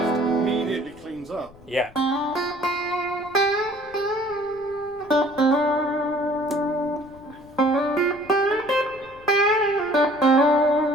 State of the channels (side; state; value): left; noise; rumble, 24 dB below the sound